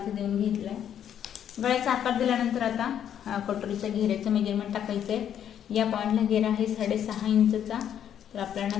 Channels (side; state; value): right; quieter; 9.6 dB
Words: देऊन घेतला आहे. गळ्याचा आकार दिल्यानंतर आता कटोरीच्या घेऱ्याचं मेजरमेंट टाकायचं आहे. या पॉईंटला घेरा आहे 6.5 इंचचा. तर